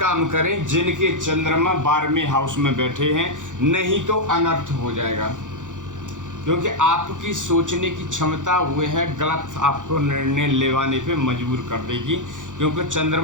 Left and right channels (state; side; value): late; left; 0.87 ms